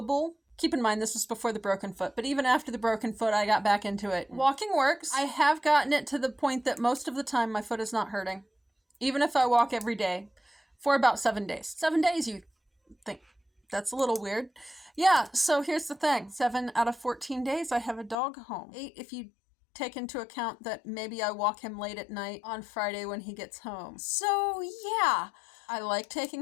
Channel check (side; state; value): right; drops out; at 18.2 s